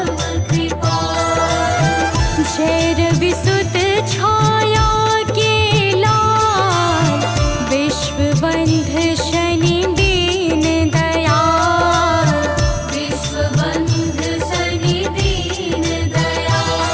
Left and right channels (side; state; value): both; identical; correlation 1.00